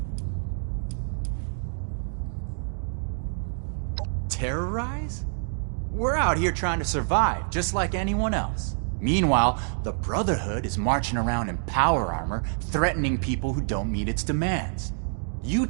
Terrorize? We're out here trying to survive, just like anyone else. Meanwhile, the Brotherhood is marching around in power armor, threatening people who don't meet its demands. You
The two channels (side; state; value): left; silent; digital silence